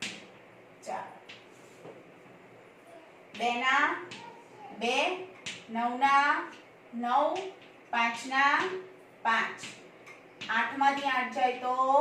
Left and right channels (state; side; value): identical; both; correlation 1.00